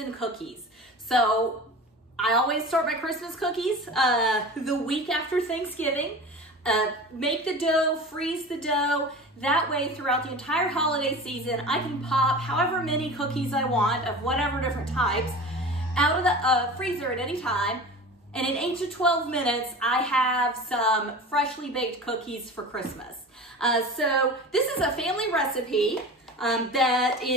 cookies. So I always start my Christmas cookies the week after Thanksgiving. Make the dough, freeze the dough. That way throughout the entire holiday season I can pop however many cookies I want of whatever different types out of the freezer at any time. And in 8 to 12 minutes, I have some freshly baked cookies for Christmas. So this is a family recipe that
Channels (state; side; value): normal; both; correlation 0.34